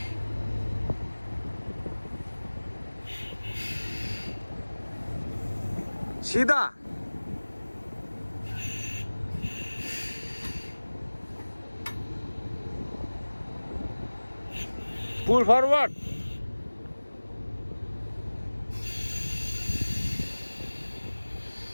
सीधा Pull forward.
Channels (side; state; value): both; inverted; correlation -1.00